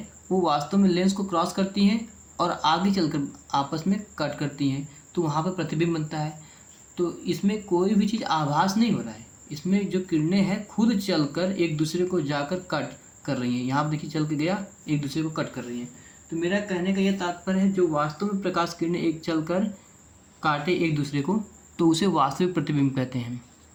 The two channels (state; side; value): identical; both; correlation 1.00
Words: वो वास्तव में लेंस को क्रॉस करती हैं और आगे चलकर आपस में कट करती हैं, तो वहाँ पर प्रतिबिंब बनता है। तो इसमें कोई भी चीज़ आभास नहीं हो रहा है, इसमें जो किरणें हैं खुद चलकर एक दूसरे को जाकर कट कर रही हैं। यहाँ पर देखिए चल के गया, एक दूसरे को कट कर रही हैं। तो मेरा कहने का यह तात्पर्य है, जो वास्तव में प्रकाश किरणें एक चलकर काटे एक दूसरे को, तो उसे वास्तविक प्रतिबिंब कहते हैं।